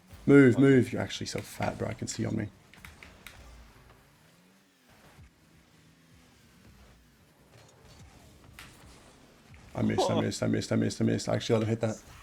Move, move. You're actually so fat, bro. I can see on me. I missed. I actually let him hit that.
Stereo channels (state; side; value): identical; both; correlation 1.00